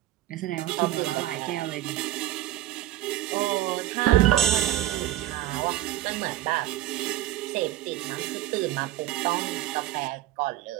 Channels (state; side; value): quieter; left; 14.2 dB